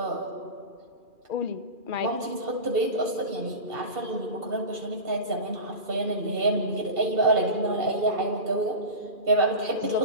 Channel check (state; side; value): late; left; 2.4 ms